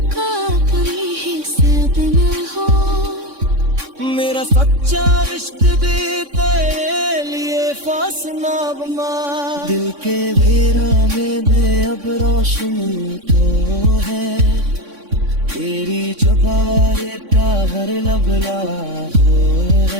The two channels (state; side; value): late; left; 3.6 ms